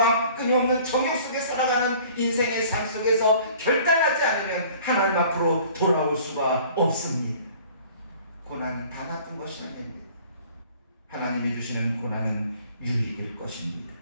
끊임없는 정욕 속에 살아가는 인생의 삶 속에서 결단하지 않으면 하나님 앞으로 돌아올 수가 없습니다. 고난은 다 나쁜 것이 아닙니다. 하나님이 주시는 고난은 유익일 것입니다.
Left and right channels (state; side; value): inverted; both; correlation -0.50